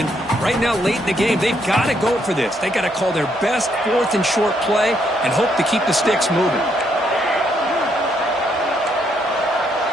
right now, late in the game, they've got to go for this. They've got to call their best 4th and short play and hope to keep the sticks moving.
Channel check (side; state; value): both; normal; correlation 0.74